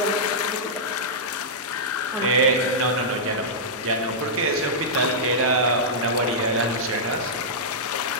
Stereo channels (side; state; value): both; normal; correlation -0.11